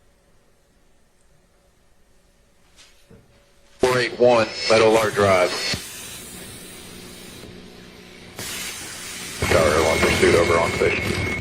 .481 Meadow Lark Drive. Tower Airline pursuit over on station.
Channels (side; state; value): both; identical; correlation 1.00